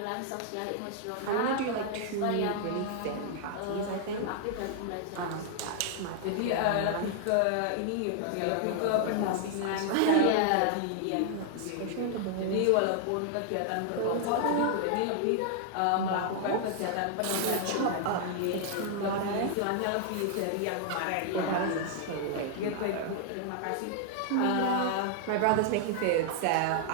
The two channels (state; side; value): different; both; correlation 0.00